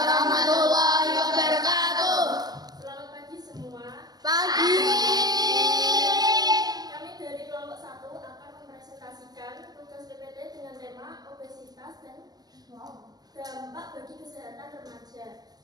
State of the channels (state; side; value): late; left; 0.19 ms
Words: wabarakatuh. Selamat pagi semua. Pagi. Kami dari kelompok 1 akan mempresentasikan tugas PPT dengan tema obesitas dan dampak bagi kesehatan remaja.